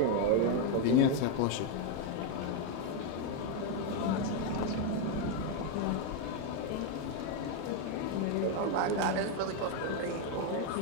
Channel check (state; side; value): different; both; correlation 0.01